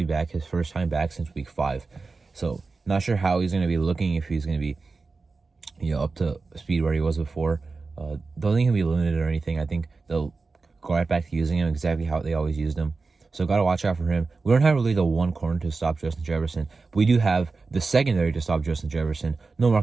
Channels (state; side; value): quieter; left; 4.1 dB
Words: back, his first time back since week 5. So not sure how he's going to be looking, if he's going to be, up to speed where he was before. Don't think he'll be limited or anything. I think they'll go right back to using him exactly how they always used him. So got to watch out for him. We don't have really the one corner to stop Justin Jefferson, but we do have the secondary to stop Justin Jefferson. No